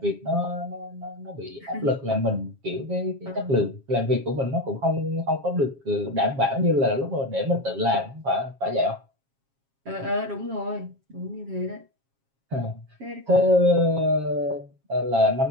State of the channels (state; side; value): late; left; 7.4 ms